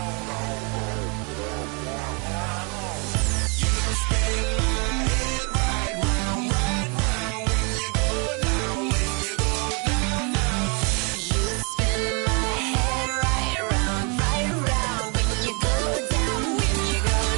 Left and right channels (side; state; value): left; quieter; 32.9 dB